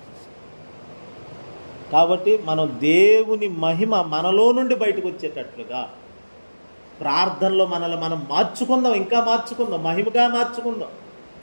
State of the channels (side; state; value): both; inverted; correlation -1.00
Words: కాబట్టి మనం దేవుని మహిమ మనలో నుండి బయటకు వచ్చేటట్లుగా ప్రార్థనలో మనల్ని మనం మార్చుకుందాం, ఇంకా మార్చుకుందాం, మహిమగా మార్చుకుందాం,